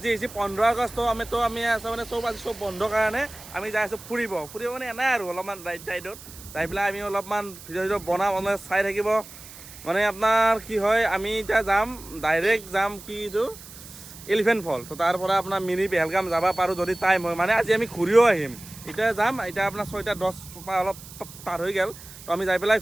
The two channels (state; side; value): noise; right; hiss, 17 dB below the sound